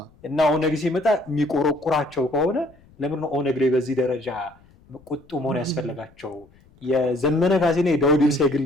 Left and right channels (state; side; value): noise; left; rumble, 29 dB below the sound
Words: እና ኦነግ ሲመጣ የሚቆረቁራቸው ከሆነ ለምን ነው ኦነግ ላይ በዚህ ደረጃ ቁጡ መሆን ያስፈልጋቸው? የዘመነ ካሴና የዳውድ ኢብሳ የግል